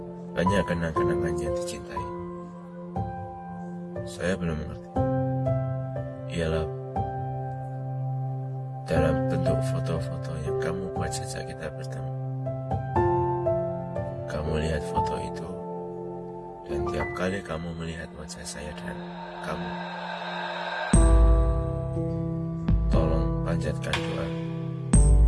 banyak kenang-kenangan yang dicintai. Saya belum mengerti. Ialah dalam bentuk foto-foto yang kamu buat sejak kita bertemu. Kamu lihat foto itu, dan tiap kali kamu melihat wajah saya dan kamu, tolong panjatkan doa.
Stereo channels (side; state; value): both; identical; correlation 1.00